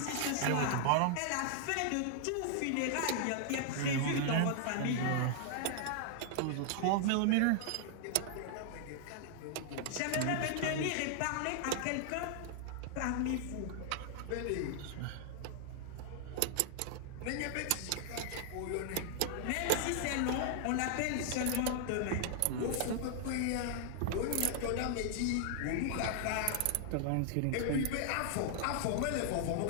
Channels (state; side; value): different; both; correlation -0.01